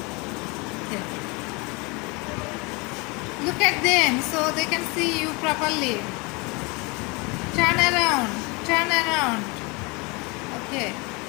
Okay. Look at them so they can see you properly. Turn around. Turn around. Okay.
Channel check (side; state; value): right; quieter; 27.8 dB